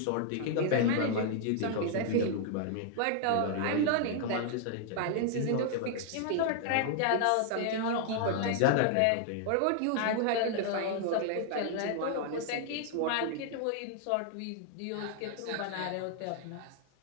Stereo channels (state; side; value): different; both; correlation 0.00